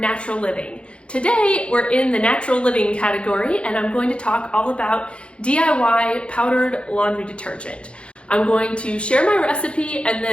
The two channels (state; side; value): late; right; 0.058 ms